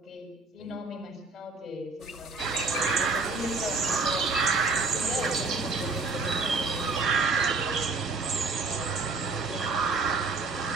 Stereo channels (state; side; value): quieter; left; 3.9 dB